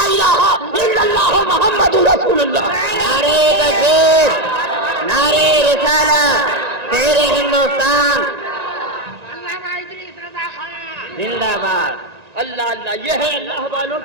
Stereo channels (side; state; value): left; late; 1.9 ms